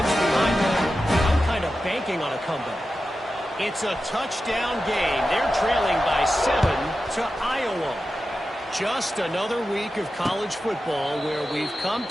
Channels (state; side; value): normal; both; correlation 0.92